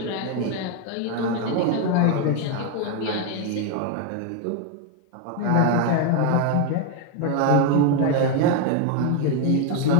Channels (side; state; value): both; different; correlation 0.01